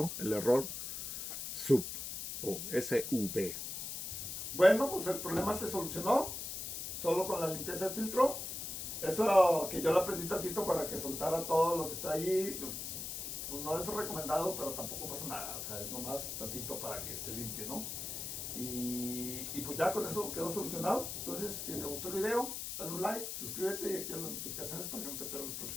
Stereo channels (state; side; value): noise; left; hiss, 5 dB below the sound